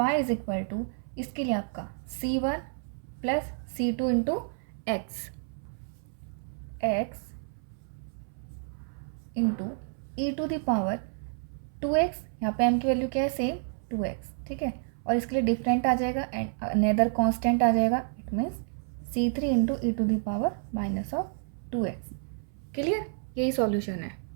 is equal to, इसके लिए आपका c1 plus c2 into x into e to the power 2x. यहाँ पे m की वैल्यू क्या है, सेम 2x. ठीक है, और इसके लिए डिफरेंट आ जाएगा एंड अनदर कांस्टेंट आ जाएगा. It means c3 into E to the power minus of 2x. Clear, यही सॉल्यूशन है.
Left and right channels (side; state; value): left; silent; 58 dB below the other